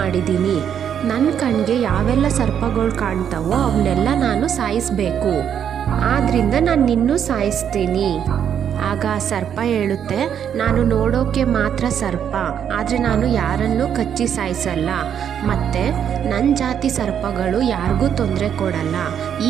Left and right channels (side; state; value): left; quieter; 8.7 dB